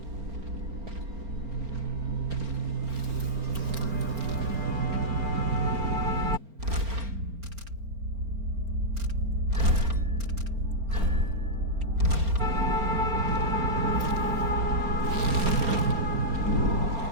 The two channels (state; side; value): late; left; 4.4 ms